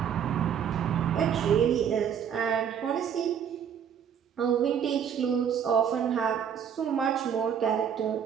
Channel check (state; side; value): quieter; left; 8.2 dB